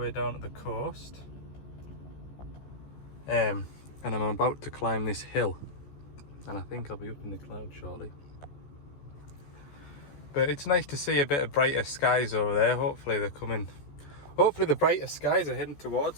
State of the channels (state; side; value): late; right; 14 ms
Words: down to the coast. And I'm about to climb this hill, and I think I'll be up in the clouds shortly. But it's nice to see a bit of brighter skies over there. Hopefully they're coming. Hopefully the brighter skies are heading